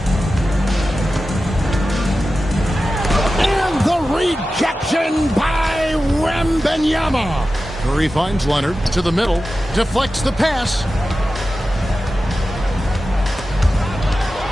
And the rejection by Wembanyama. Curry finds Leonard to the middle. Deflects the pass.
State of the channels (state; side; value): normal; both; correlation 0.93